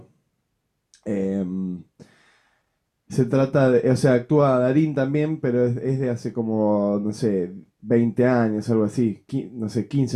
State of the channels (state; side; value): identical; both; correlation 1.00